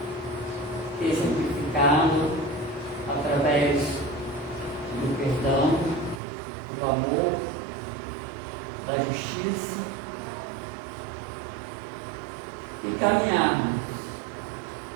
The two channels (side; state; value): left; drops out; at 6.2 s